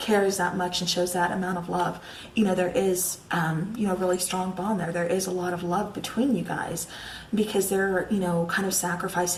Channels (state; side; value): identical; both; correlation 1.00